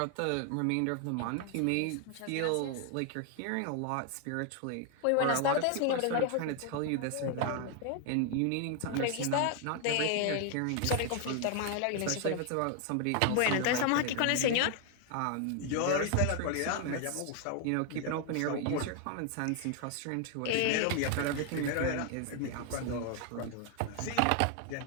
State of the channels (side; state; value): both; different; correlation 0.00